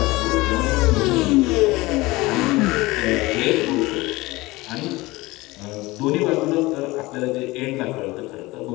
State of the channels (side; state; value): right; quieter; 20.9 dB